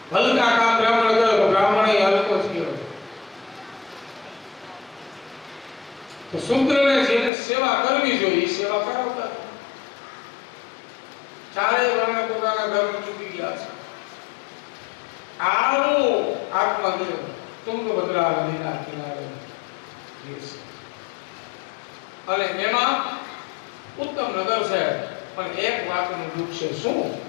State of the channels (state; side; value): drops out; right; at 7.3 s